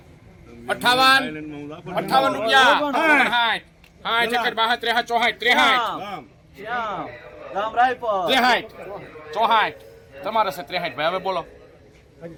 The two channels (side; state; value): both; identical; correlation 1.00